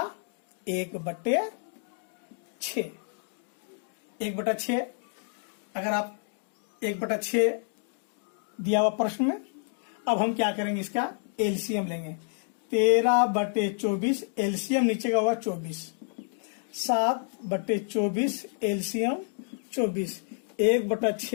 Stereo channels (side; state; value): right; silent; 58 dB below the other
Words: 1/6। 1/6 अगर आप 1/6 दिया हुआ प्रश्न में, अब हम क्या करेंगे, इसका एलसीएम लेंगे। 13/24 एलसीएम नीचे का होगा 24, 7/24 एलसीएम 24,